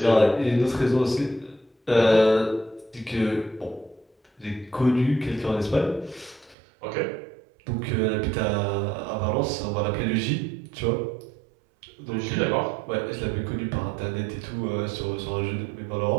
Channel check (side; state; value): left; drops out; at 6.6 s